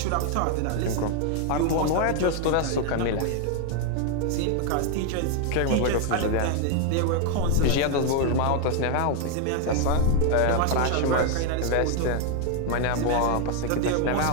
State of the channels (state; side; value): different; both; correlation 0.00